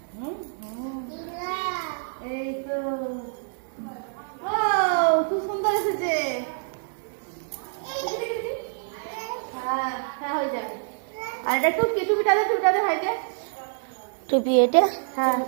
এই তো খুব সুন্দর এসেছে। হ্যাঁ হ্যাঁ হয়ে যাবে। আর এটা টুপিটা দে ভাইকে। টুপি এটা? হ্যাঁ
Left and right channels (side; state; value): left; silent; digital silence